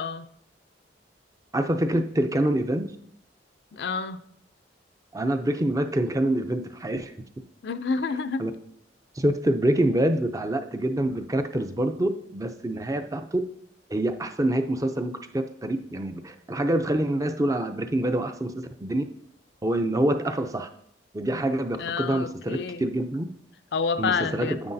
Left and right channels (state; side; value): normal; both; correlation 0.75